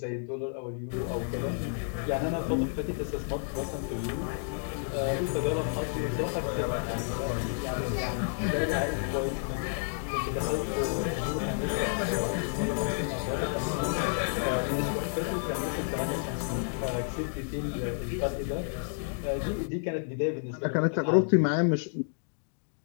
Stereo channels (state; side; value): silent; right; digital silence